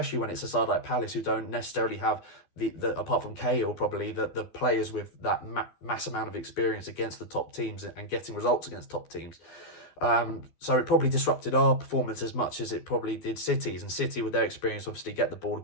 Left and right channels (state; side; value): late; right; 12 ms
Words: when it's a side like Palace who don't necessarily have the apart from Cahill, probably the players with that mass amount of experience against the top teams and getting results against top teams. So it probably disrupted our performance as much as it probably did City's. And City, with their experience, obviously get the ball